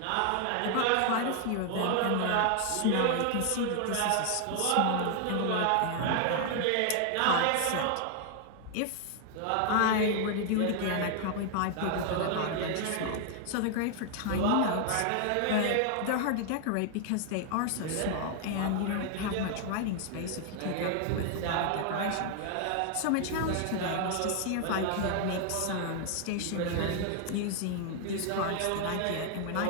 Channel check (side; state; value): both; different; correlation 0.00